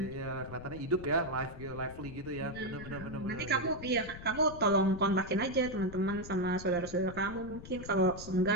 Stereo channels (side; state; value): left; noise; rumble, 13 dB below the sound